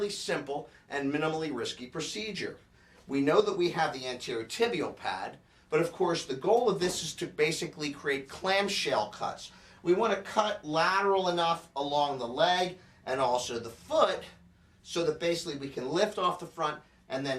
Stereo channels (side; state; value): both; identical; correlation 1.00